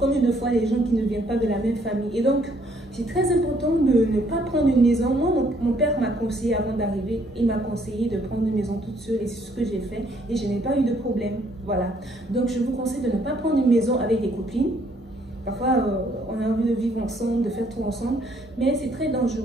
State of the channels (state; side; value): normal; both; correlation 0.66